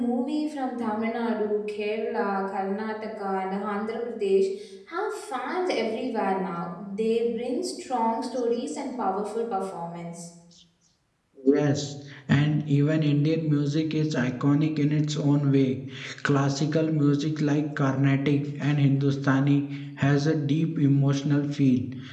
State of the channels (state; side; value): identical; both; correlation 1.00